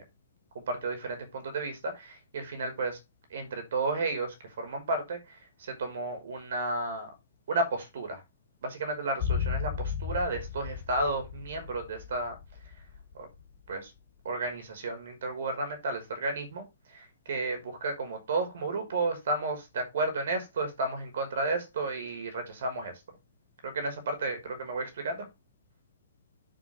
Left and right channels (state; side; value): inverted; both; correlation -0.46